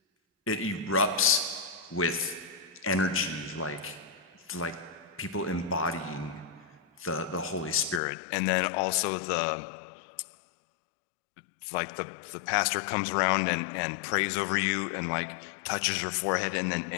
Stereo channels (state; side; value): drops out; right; at 8.0 s